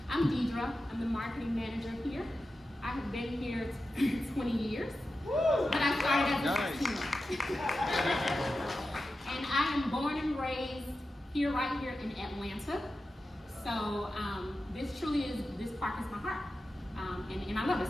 I'm Deidre. I'm the marketing manager here. I have been here 20 years, but I started as a 16-year-old. And I am born and raised here, right here in Atlanta. So this park is my heart, and I love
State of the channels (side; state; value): both; normal; correlation 0.92